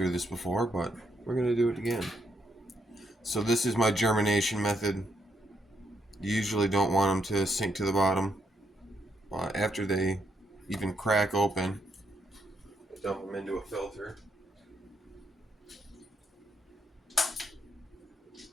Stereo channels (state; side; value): normal; both; correlation 0.77